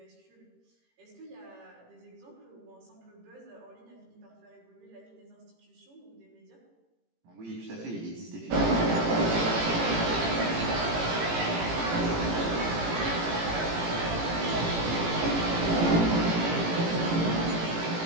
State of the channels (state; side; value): late; left; 18 ms